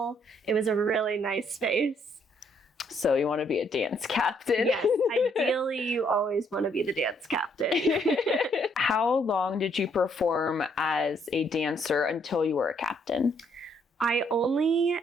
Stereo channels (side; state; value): both; normal; correlation 0.69